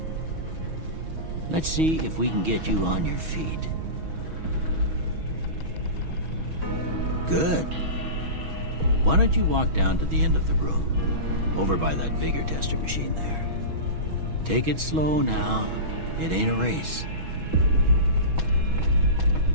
Let's see if we can get you on your feet. Good. Why don't you walk down to the end of the room, over by that vigor tester machine there. Take it slow now. It ain't a race.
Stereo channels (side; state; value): left; late; 6.2 ms